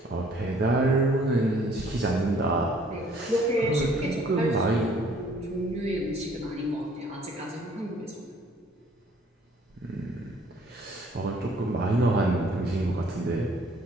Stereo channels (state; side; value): normal; both; correlation 0.59